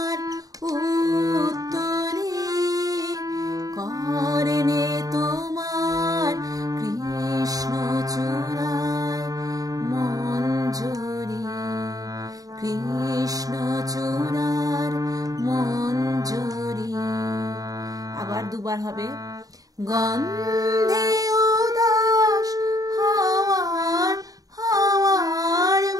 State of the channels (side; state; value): left; late; 0.18 ms